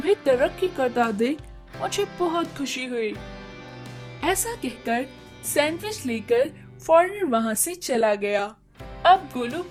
तरक्की करता देख मुझे बहुत खुशी हुई। ऐसा कहकर सैंडविच लेकर फॉरेनर वहाँ से चला गया। अब गोलू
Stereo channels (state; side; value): identical; both; correlation 1.00